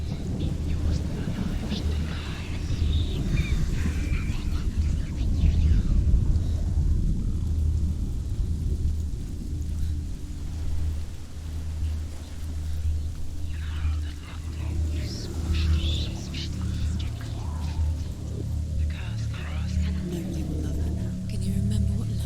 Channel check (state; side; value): identical; both; correlation 1.00